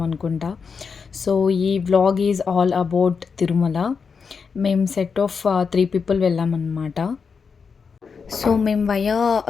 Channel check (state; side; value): quieter; right; 5.6 dB